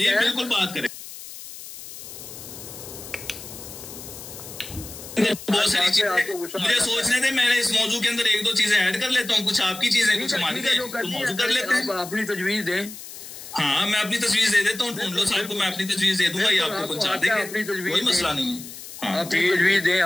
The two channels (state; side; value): noise; left; hiss, 13 dB below the sound